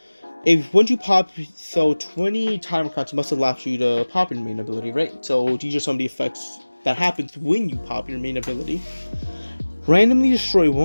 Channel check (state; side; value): inverted; both; correlation -1.00